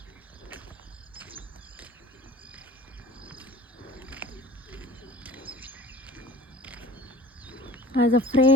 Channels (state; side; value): normal; both; correlation 0.44